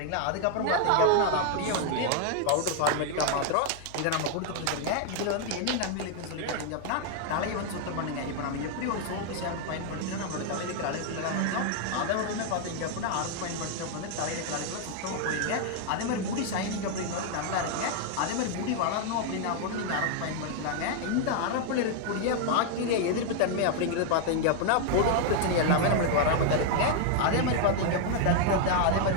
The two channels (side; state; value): both; different; correlation 0.00